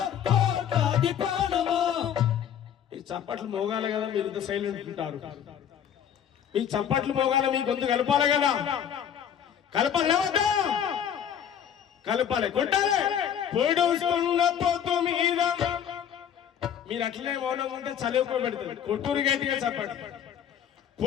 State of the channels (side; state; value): right; quieter; 9.0 dB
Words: కోట్లాది ప్రాణమా. ఈ చప్పట్లు మోగాలి కదా, మీరు ఇంత సైలెంట్ ఉంటారు. మీ చప్పట్లు మోగాలి, మీ గొంతు కలపాలి కదా, కలపాలి కలపాలి కొట్టాలి. పొడుస్తున్న పొత్తు మీద, మీరు అట్లనే మౌనంగా ఉంటే చదువుకో పెడతారు. కొట్టూరు గట్టిగా చెప్పండి.